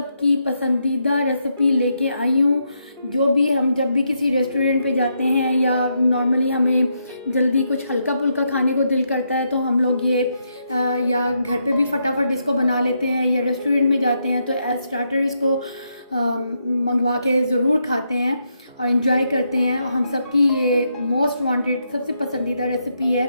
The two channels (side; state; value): both; inverted; correlation -0.79